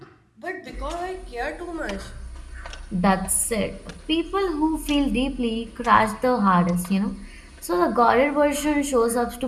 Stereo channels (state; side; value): identical; both; correlation 1.00